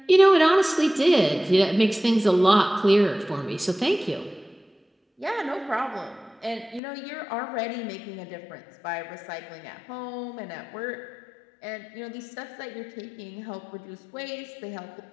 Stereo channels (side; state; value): right; drops out; at 6.8 s